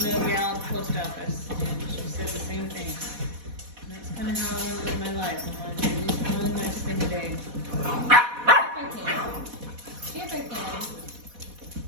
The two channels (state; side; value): late; left; 4.1 ms